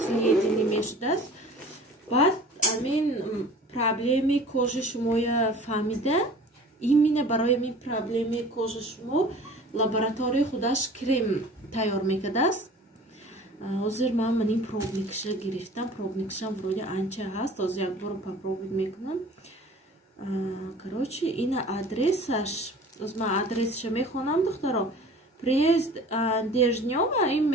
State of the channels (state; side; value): normal; both; correlation 0.44